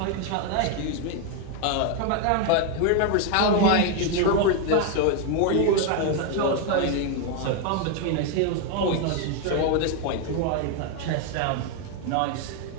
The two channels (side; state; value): both; different; correlation 0.01